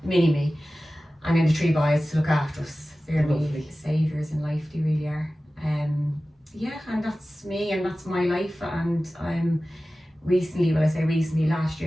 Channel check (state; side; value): normal; both; correlation 0.96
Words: mini me. And then the 3 boys to look after us. They're my saviours in life, they really are. Yeah, and that's me and that's my life. And I'm recently, last